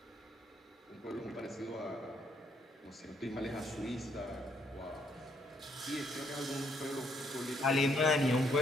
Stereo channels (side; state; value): both; normal; correlation 0.71